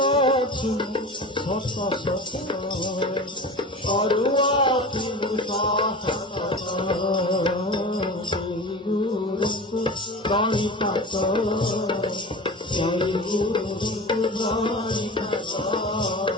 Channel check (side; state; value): both; normal; correlation 0.32